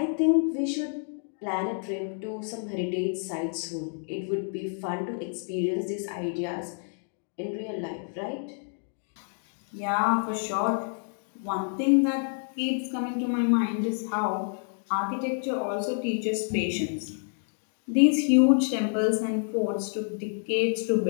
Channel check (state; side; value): silent; right; 59 dB below the other